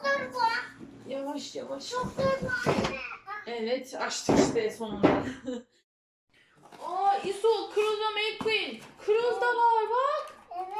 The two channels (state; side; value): identical; both; correlation 1.00